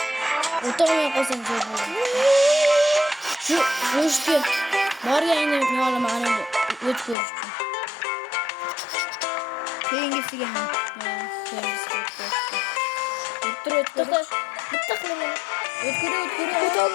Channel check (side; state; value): right; drops out; at 7.2 s